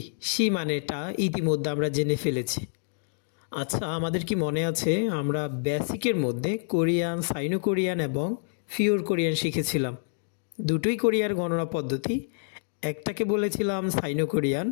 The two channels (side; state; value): right; silent; digital silence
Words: শি মানেটা ইতিমধ্যে আমরা জেনে ফেলেছি। আচ্ছা, আমাদের কি মনে আছে আমরা বেসিকের মধ্যে কোরিয়ান, সাইনো কোরিয়ান এবং ফিওর কোরিয়ান শিখেছিলাম। দুটোই কোরিয়ার গণনা পদ্ধতি, একটাকে বলেছিলাম সাইনো কোরিয়ান,